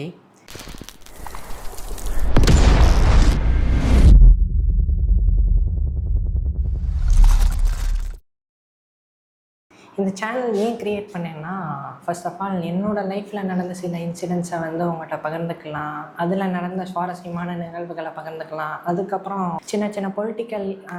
இந்த சேனல் ஏன் க்ரியேட் பண்ணேன்னா, ஃபர்ஸ்ட் ஆஃப் ஆல் என்னோடய லைஃப்பில் நடந்த சில இன்சிடென்ட்ஸை உங்கள்கிட்ட பகிர்ந்துக்கலாம். அதில் நடந்த சுவாரஸ்யமான நிகழ்வுகளை பகிர்ந்துக்கலாம். அதுக்கப்புறம் சின்ன சின்ன பொலிட்டிக்கல்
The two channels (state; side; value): identical; both; correlation 1.00